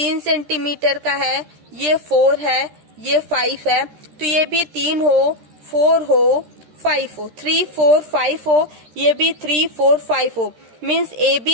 सेंटीमीटर का है, ये 4 है, ये 5 है, तो ये भी 3 हो, 4 हो, 5 हो, 3 4 5 हो, ये भी 3 4 5 हो। मीन्स ए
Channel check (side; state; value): left; late; 13 ms